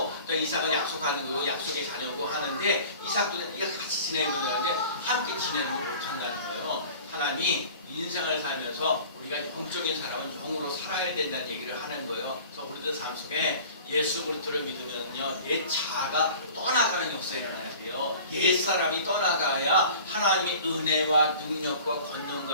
또 이삭은 약속하는 거고 약속의 자녀고 하는데 이삭도 같이 지내는 되는데 함께 지내는 걸 못한다는 거예요. 하나님이 인생을 살면서 우리가 영적인 사람은 영으로 살아야 된다는 얘기를 하는 거예요. 그래서 우리들 삶 속에 예수 그리스도를 믿으면요 옛 자아가 떠나가는 역사가 일어나야 돼요. 옛 사람이 떠나가야 하나님의 은혜와 능력과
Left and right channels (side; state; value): both; inverted; correlation -0.43